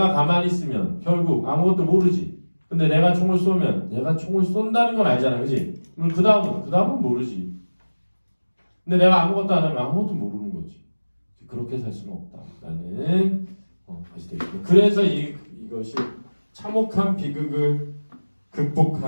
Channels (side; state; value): both; inverted; correlation -1.00